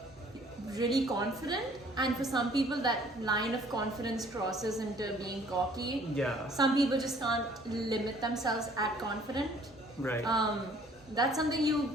really confident, and for some people, that line of confidence crosses into being cocky. Yeah. Some people just can't limit themselves at confident. Right. That's something you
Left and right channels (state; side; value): normal; both; correlation 0.57